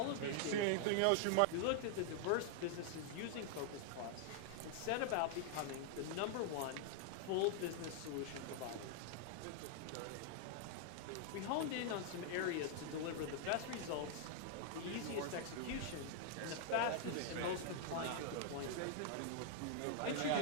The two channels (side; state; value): both; different; correlation 0.00